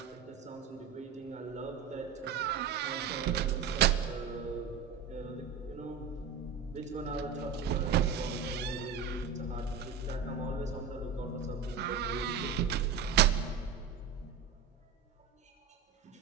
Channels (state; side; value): quieter; left; 6.7 dB